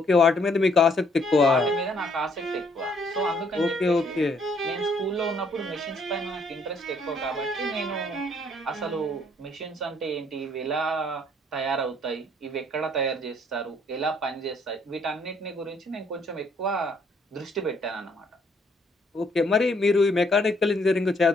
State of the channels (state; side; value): normal; both; correlation 0.67